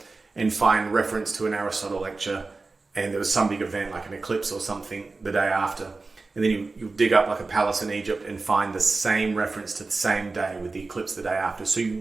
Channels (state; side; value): quieter; left; 3.7 dB